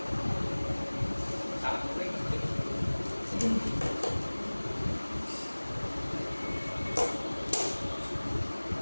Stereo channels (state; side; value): inverted; both; correlation -1.00